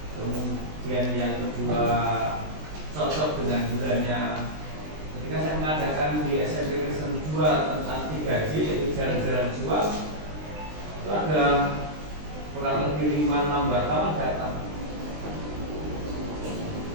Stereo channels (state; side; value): late; left; 20 ms